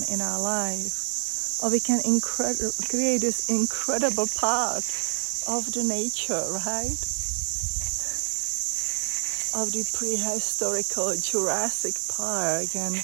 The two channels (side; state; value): left; silent; 60 dB below the other